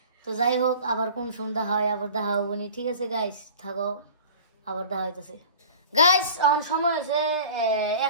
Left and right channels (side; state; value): both; inverted; correlation -0.43